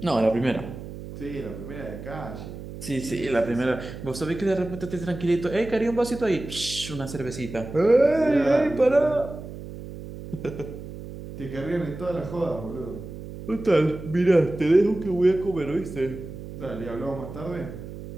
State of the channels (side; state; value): right; noise; hum, 11 dB below the sound